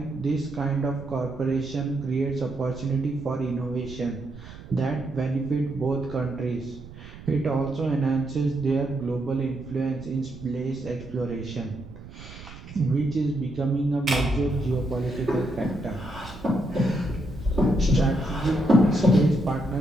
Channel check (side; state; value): right; noise; rumble, 16 dB below the sound